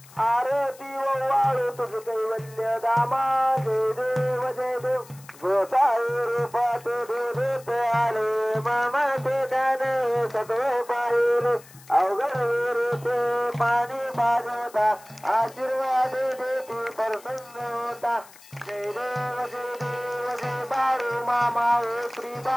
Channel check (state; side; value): noise; left; hiss, 22 dB below the sound